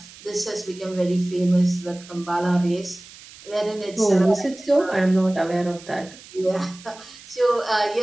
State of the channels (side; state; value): right; noise; hiss, 20 dB below the sound